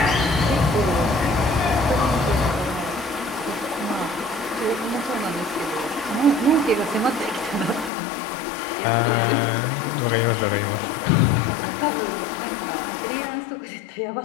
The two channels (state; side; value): drops out; right; at 7.9 s